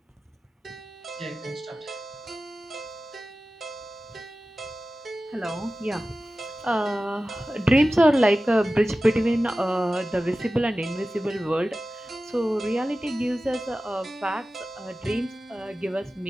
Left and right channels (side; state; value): both; normal; correlation 0.95